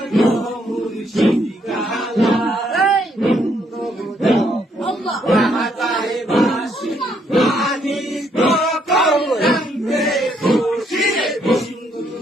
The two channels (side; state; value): both; normal; correlation 0.71